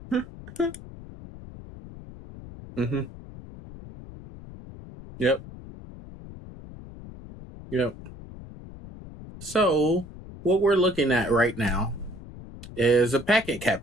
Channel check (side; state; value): left; noise; rumble, 16 dB below the sound